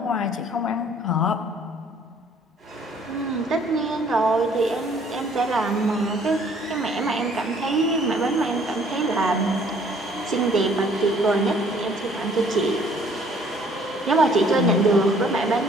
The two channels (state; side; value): normal; both; correlation 0.59